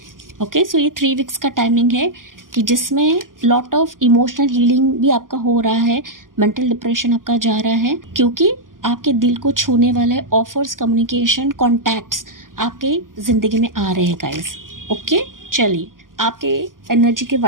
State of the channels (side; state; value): left; late; 0.90 ms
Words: ओके, सो ये 3 वीक्स का टाइमिंग है कि जिसमें लॉट ऑफ इमोशनल हीलिंग भी आपका हो रहा है, मेंटल डिप्रेशन आपका जा रहा है, क्योंकि आपके दिल को छूने वाले ऑफर्स, कम्युनिकेशन, कॉन्टैक्ट्स आपके ज़िंदगी में आ रहे हैं गाइस। ओके, चलिए आपके एनर्जी के